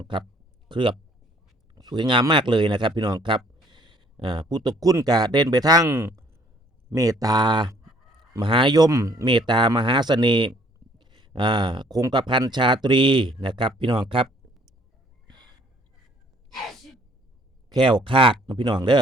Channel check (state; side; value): normal; both; correlation 0.61